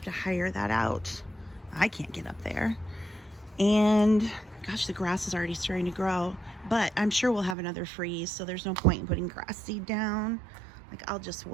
to hire that out. I can't get up there. And gosh, the grass is already starting to grow, but I'm sure we'll have another freeze, so there's no point in putting grass seed down. Like, I'll just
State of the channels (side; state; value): left; drops out; at 7.6 s